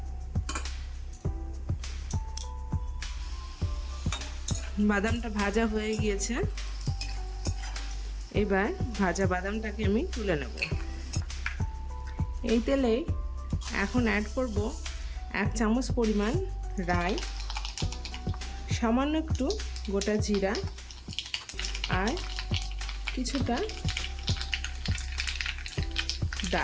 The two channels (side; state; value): both; identical; correlation 1.00